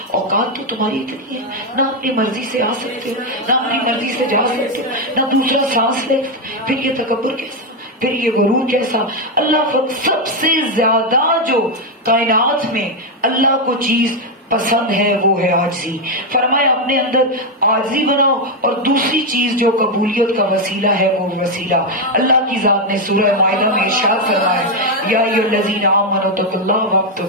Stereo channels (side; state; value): both; normal; correlation 0.04